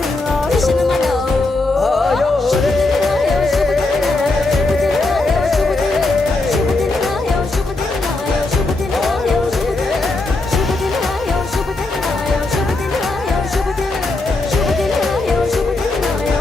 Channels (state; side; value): quieter; right; 3.1 dB